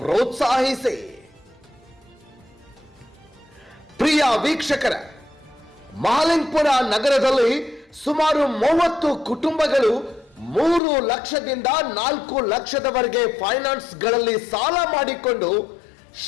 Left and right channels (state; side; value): drops out; right; at 10.8 s